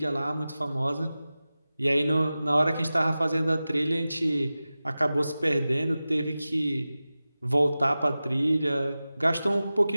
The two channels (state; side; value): inverted; both; correlation -0.96